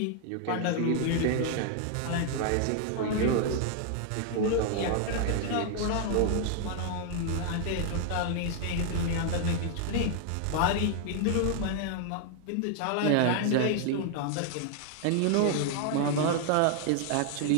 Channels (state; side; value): different; both; correlation 0.00